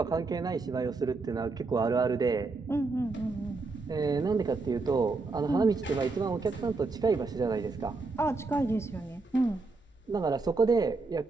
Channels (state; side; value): quieter; left; 3.8 dB